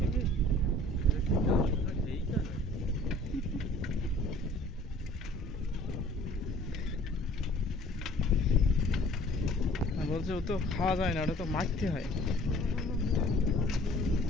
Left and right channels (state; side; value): normal; both; correlation 0.52